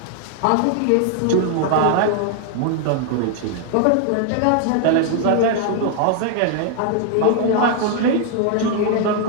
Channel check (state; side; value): different; both; correlation 0.00